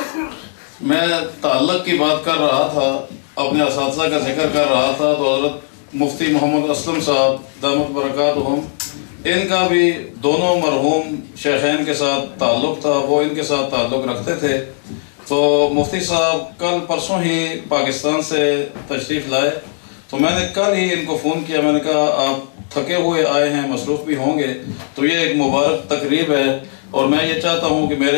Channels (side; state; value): right; silent; digital silence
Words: میں تعلق کی بات کر رہا تھا، اپنے اساتذہ کا ذکر کر رہا تھا، تو حضرت مفتی محمد اسلم صاحب دامت برکاتہم، ان کا بھی دونوں مرحوم شیخین کے ساتھ تعلق تھا، وہ ان کے ساتھ تعلق رکھتے تھے۔ تو مفتی صاحب کل پرسوں ہی پاکستان سے تشریف لائے، تو میں نے کل ہی ان کو فون کیا، میں نے کہا آپ تھکے ہوئے آئے ہیں، مصروف بھی ہوں گے، تو یہ ایک مبارک تقریب ہے، اور میں یہ چاہتا ہوں کہ